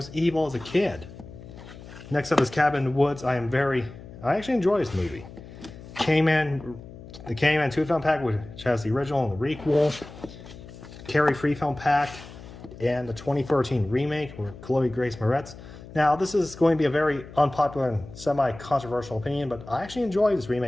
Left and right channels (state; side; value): noise; left; hum, 16 dB below the sound